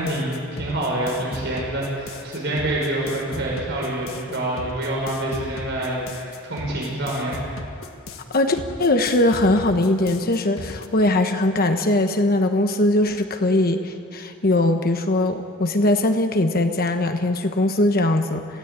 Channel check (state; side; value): normal; both; correlation 0.44